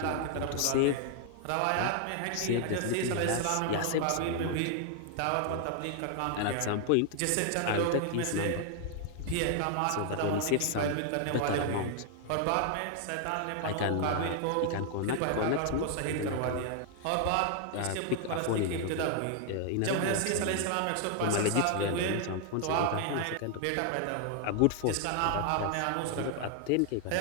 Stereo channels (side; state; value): both; different; correlation 0.00